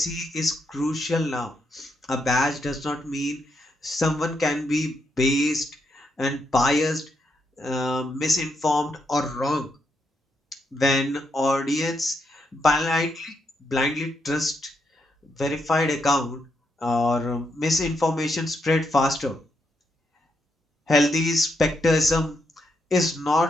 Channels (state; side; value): normal; both; correlation 0.80